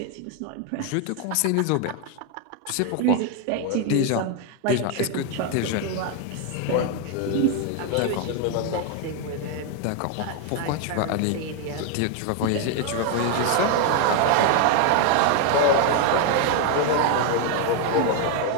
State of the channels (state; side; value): different; both; correlation 0.01